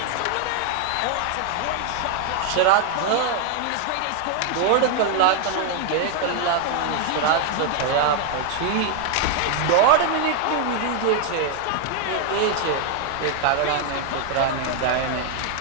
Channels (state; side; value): different; both; correlation 0.00